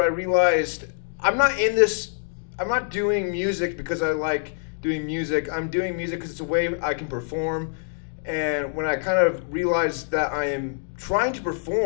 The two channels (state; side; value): silent; right; digital silence